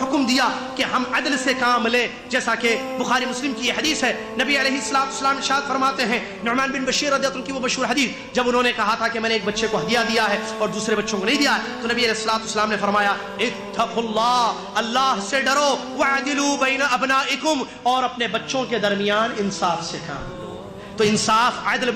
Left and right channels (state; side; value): identical; both; correlation 1.00